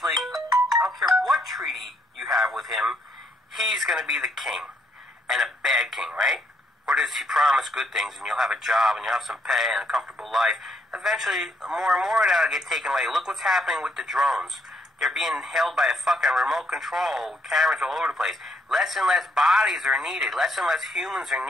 I don't care what treaty you have with him, he's gonna be the king. And a bad king, right? Or does he promise good things and you'll have a job and you'll have some pay and a comfortable life? Eventually, more and more of that will get taken away. Look what's happening with the drones. They're being held by a fucking remote control, cameras all over the place. Less and less bodies are needed. Less and less humans are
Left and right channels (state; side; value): normal; both; correlation 0.72